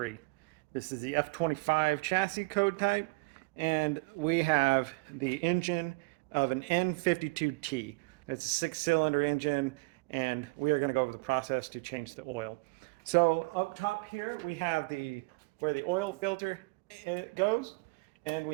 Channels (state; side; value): quieter; left; 26.9 dB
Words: This is the F25 chassis code type, and we have the engine of an N52T. It's a 6-cylinder engine, and we are going to go over the process to change the oil. So up top here we have where the oil filter goes, and